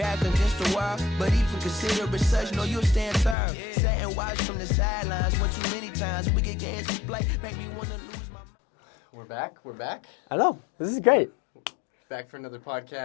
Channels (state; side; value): drops out; right; at 3.4 s